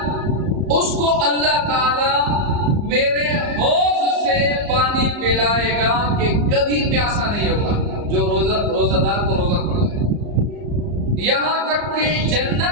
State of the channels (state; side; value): late; left; 34 ms